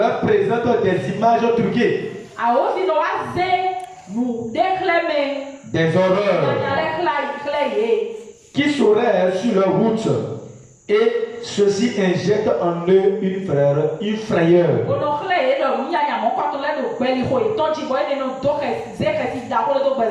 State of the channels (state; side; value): identical; both; correlation 1.00